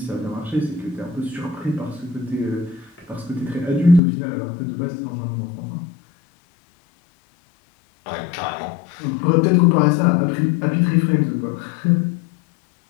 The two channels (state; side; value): drops out; right; at 4.0 s